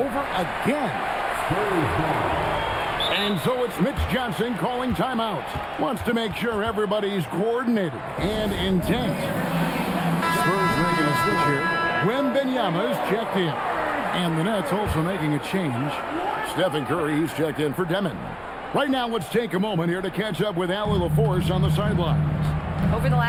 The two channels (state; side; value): identical; both; correlation 1.00